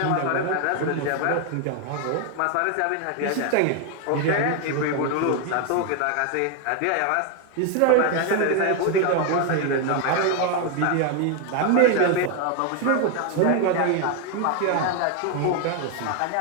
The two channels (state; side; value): different; both; correlation 0.01